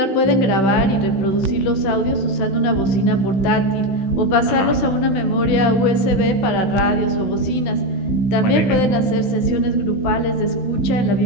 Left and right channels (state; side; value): late; right; 16 ms